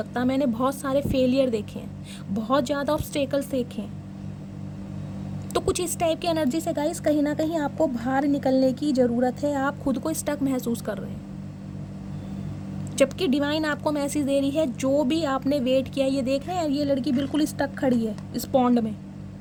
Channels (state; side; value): identical; both; correlation 1.00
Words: मैंने बहुत सारे फेलियर देखे हैं, बहुत ज़्यादा ऑब्स्टेकल्स देखे हैं। तो कुछ इस टाइप की एनर्जी से गाइस कहीं ना कहीं आपको बाहर निकलने की ज़रूरत है। आप खुद को स्टक महसूस कर रहे हैं, जबकि डिवाइन आपको मैसेज दे रही है जो भी आपने वेट किया। ये देख रहे हैं, ये लड़की बिल्कुल स्टक खड़ी है इस पॉन्ड में,